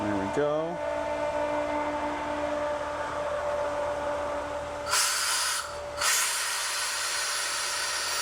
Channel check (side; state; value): both; identical; correlation 1.00